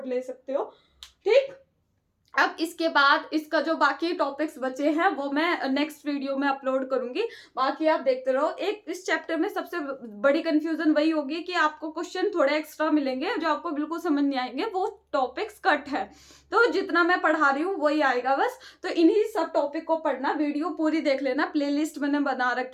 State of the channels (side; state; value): both; identical; correlation 1.00